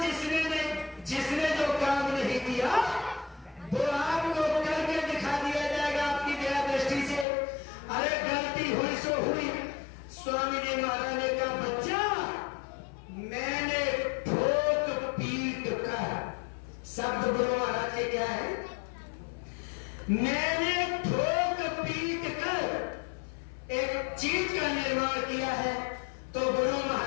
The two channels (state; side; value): drops out; right; at 7.2 s